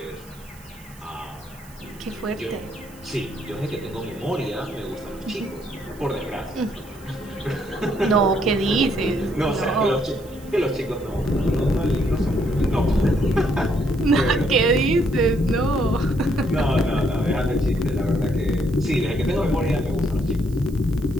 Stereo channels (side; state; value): right; noise; hiss, 24 dB below the sound